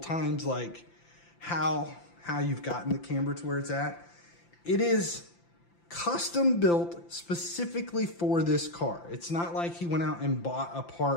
like how you've gotten the camber to where it's at. It is custom built specifically for this car. It's not like he went out and bought a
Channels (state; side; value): late; right; 5.8 ms